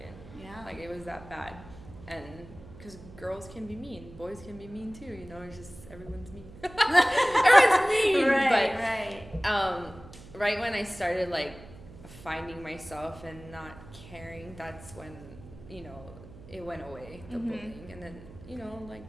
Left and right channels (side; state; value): right; noise; hum, 18 dB below the sound